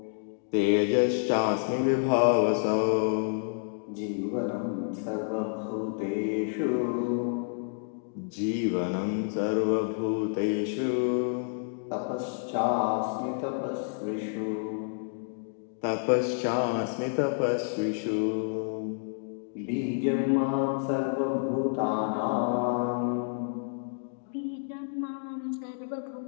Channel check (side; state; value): right; silent; digital silence